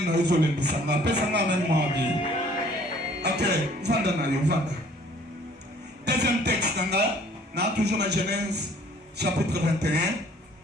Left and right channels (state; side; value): normal; both; correlation 0.56